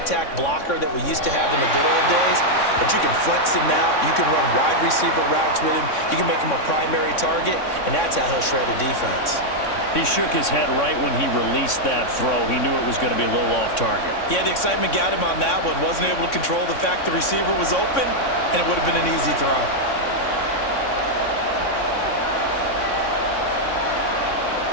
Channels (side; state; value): right; late; 3.6 ms